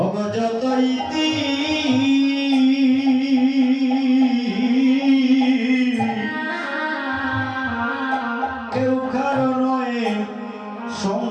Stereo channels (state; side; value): identical; both; correlation 1.00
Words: অগজত ইতি কেউ কারো নয়